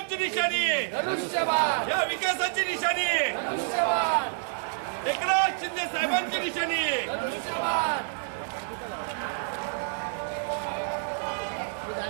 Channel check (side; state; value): left; silent; digital silence